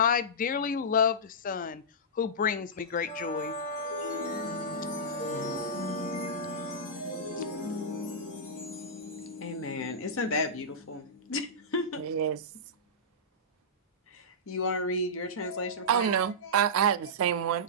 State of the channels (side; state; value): both; normal; correlation -0.15